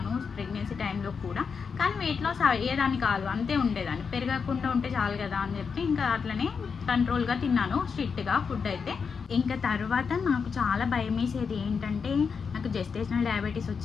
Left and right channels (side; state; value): right; quieter; 5.8 dB